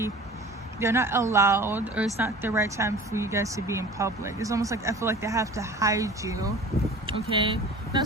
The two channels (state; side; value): normal; both; correlation 0.42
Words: they're not allowed, or it's not the right time for you guys to be in public. It's almost like I feel like they have to hide you, okay? Not